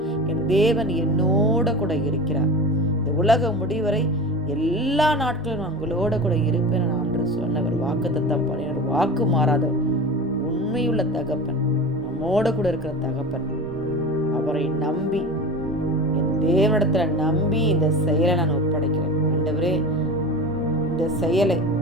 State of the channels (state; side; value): normal; both; correlation 0.31